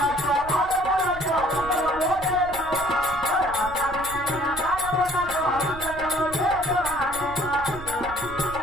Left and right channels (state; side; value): noise; right; rumble, 14 dB below the sound